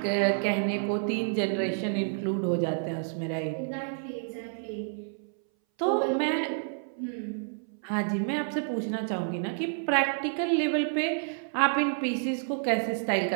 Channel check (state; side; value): silent; left; 58 dB below the other